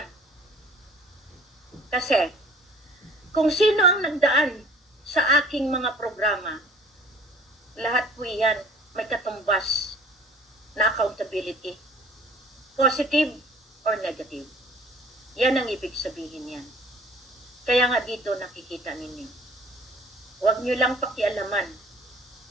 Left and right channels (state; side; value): normal; both; correlation 0.51